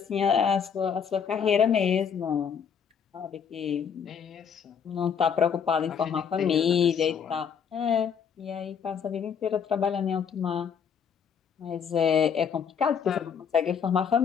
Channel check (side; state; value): right; quieter; 7.1 dB